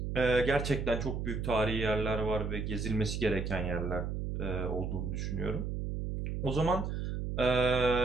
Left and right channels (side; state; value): right; noise; hum, 3 dB below the sound